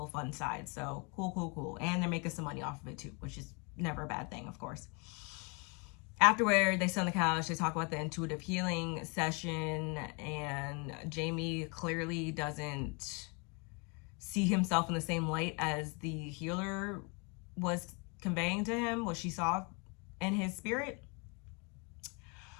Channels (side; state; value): right; quieter; 32.5 dB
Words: fun side. So cool. And they're making some money off of it too, which is never a bad thing, of course. Afterward, they sit on the couch, they talk about the intuitive healing session, and Jamie clearly doesn't see himself in the same light as the healer was conveying to him, what she saw in his spirit.